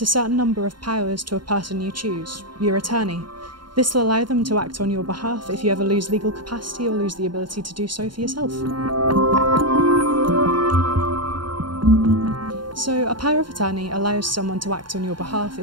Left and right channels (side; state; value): left; late; 0.72 ms